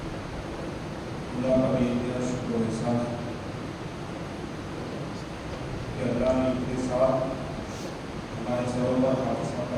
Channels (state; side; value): identical; both; correlation 1.00